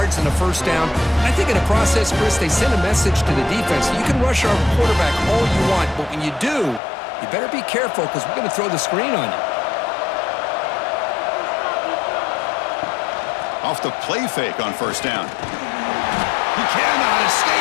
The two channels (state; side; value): drops out; right; at 6.8 s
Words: in the 1st down. I think in the process, Chris, they send a message to the defense. You can rush our quarterback all you want, but when you do, you better be careful because we're going to throw the screen on you. Off the play fake on 1st down. He cannot